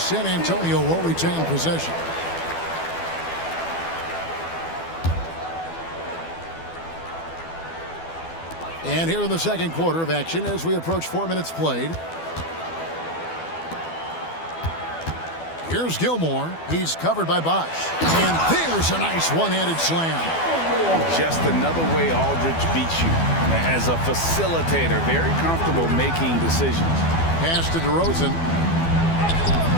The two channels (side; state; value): right; late; 12 ms